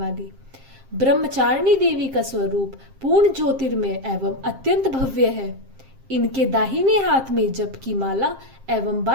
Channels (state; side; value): late; left; 7.5 ms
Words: ब्रह्मचारिणी देवी का स्वरूप पूर्ण ज्योतिर्मय एवं अत्यंत भव्य है। इनके दाहिने हाथ में जप की माला एवं